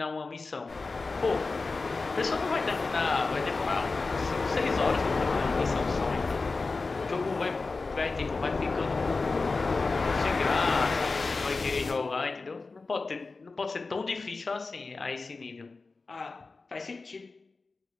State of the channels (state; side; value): quieter; right; 3.9 dB